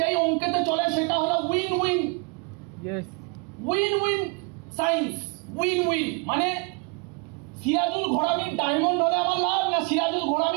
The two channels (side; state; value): left; quieter; 31.1 dB